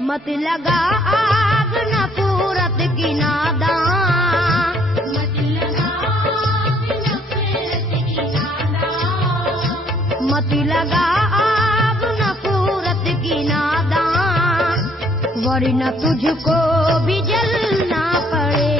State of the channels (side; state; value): both; normal; correlation 0.64